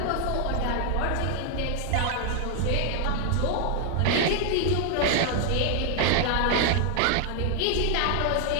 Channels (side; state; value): both; different; correlation 0.00